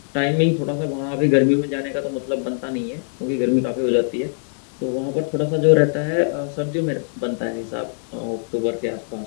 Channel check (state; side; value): silent; right; 64 dB below the other